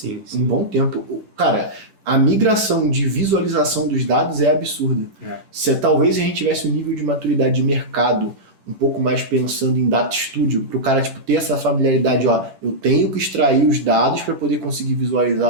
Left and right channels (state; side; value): late; left; 10 ms